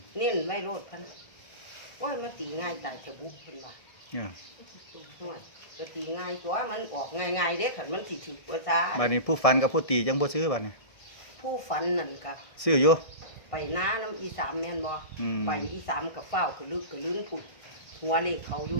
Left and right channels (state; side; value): late; right; 1.6 ms